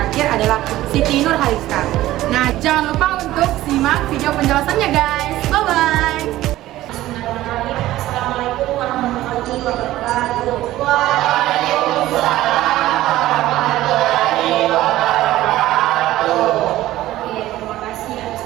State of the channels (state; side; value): quieter; left; 15.4 dB